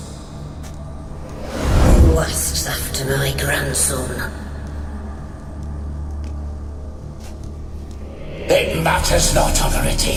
Who asks after my grandson? It matters not,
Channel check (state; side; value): identical; both; correlation 1.00